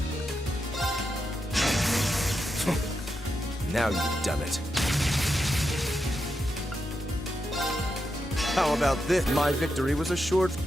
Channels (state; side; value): normal; both; correlation 0.86